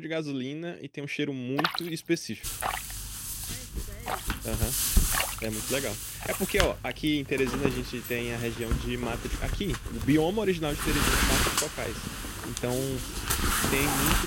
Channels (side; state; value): both; identical; correlation 1.00